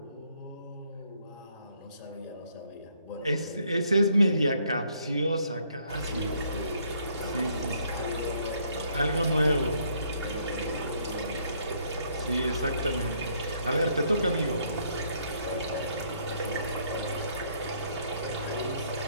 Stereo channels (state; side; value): inverted; both; correlation -0.68